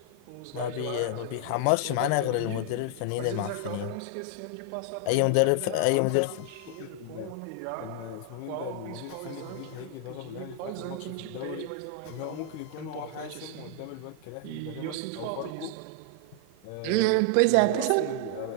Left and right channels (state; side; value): different; both; correlation 0.00